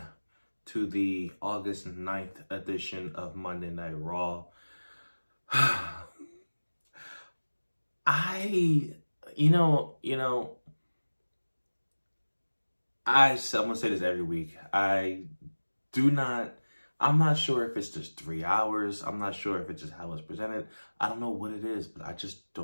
to the August 9th edition of Monday Night Raw. I'm gonna say this every week. I'm not sure if it's just 3 hours. I'm not sure if it's just how it's presented. I don't know what it is, but I just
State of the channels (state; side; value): inverted; both; correlation -1.00